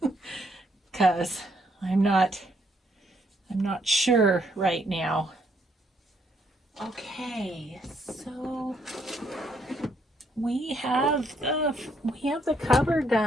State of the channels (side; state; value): both; normal; correlation 0.72